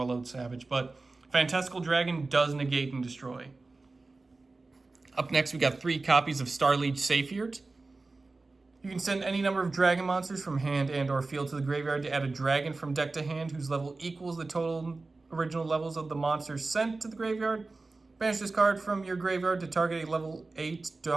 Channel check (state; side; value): quieter; left; 3.5 dB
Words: Savage. But Fantastical Dragon does negate and destroy. Up next, we got 3 copies of Starliege Saphir. You can send any number of dragon monsters from hand and or field to the graveyard to add a dragon from deck to hand whose level equals the total original levels of the monsters sent to the graveyard. Banish this card from your graveyard to target a level 8